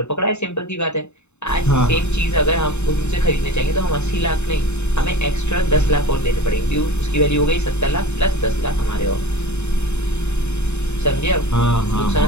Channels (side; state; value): right; late; 0.82 ms